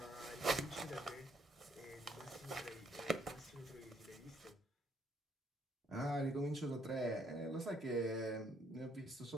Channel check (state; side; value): normal; both; correlation 0.68